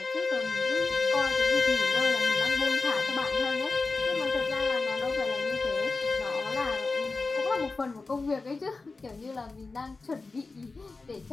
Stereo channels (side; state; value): right; quieter; 3.8 dB